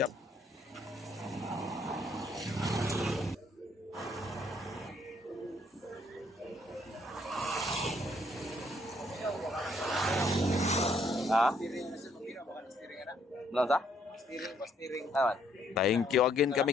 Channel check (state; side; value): normal; both; correlation 0.68